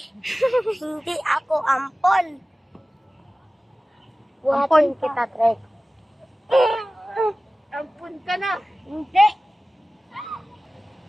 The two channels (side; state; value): both; normal; correlation 0.96